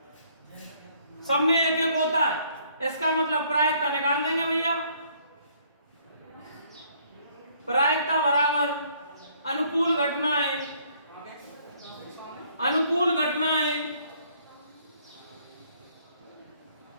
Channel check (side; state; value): both; inverted; correlation -0.64